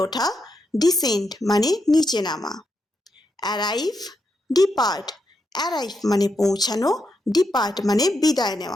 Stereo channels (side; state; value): both; normal; correlation 0.83